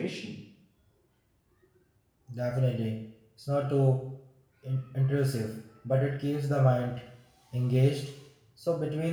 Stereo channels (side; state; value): both; identical; correlation 1.00